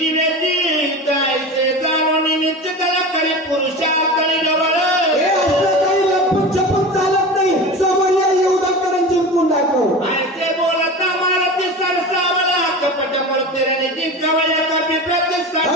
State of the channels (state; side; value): normal; both; correlation 0.30